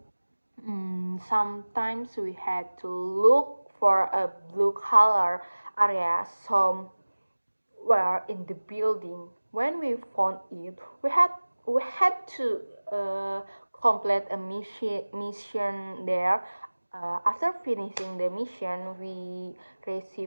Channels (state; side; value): inverted; both; correlation -1.00